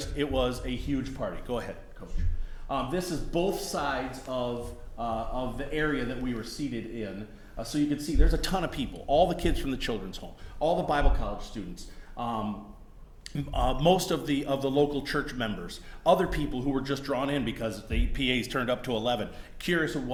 was a huge party. Go ahead, Coach. This is both sides of the area that we were seated in. So you can see there's a ton of people, all the kids from the children's home, all the Bible college students, most of the local church members, other people who were just drawn in because the PA's turned up to 11, curious of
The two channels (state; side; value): identical; both; correlation 1.00